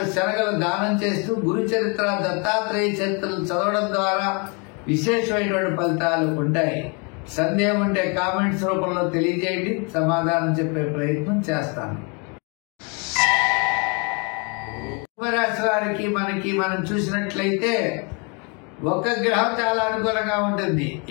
శనగలు దానం చేస్తూ గురు చరిత్ర, దత్తాత్రేయ చరిత్రలు చదవడం ద్వారా విశేషమైనటువంటి ఫలితాలు ఉంటాయి. సందేహం ఉంటే కామెంట్స్ రూపంలో తెలియజేయండి, సమాధానం చెప్పే ప్రయత్నం చేస్తాను. కుంభరాశి వారికి మనం చూసినట్లయితే ఒక గ్రహం చాలా అనుకూలంగా ఉంటుంది.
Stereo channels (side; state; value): right; quieter; 33.7 dB